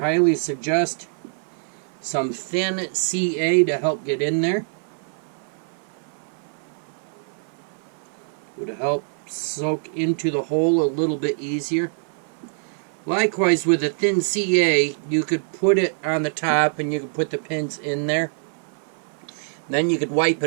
suggest some thin CA to help get in there. Would help soak into the hole a little bit easier. Likewise, with a thin CA, you could put it on the top and you could put the pins in there. Then you could wipe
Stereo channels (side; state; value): left; silent; 57 dB below the other